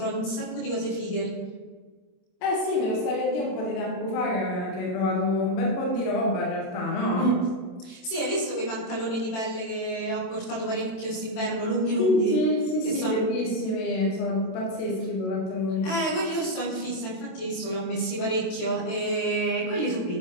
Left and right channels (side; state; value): right; late; 27 ms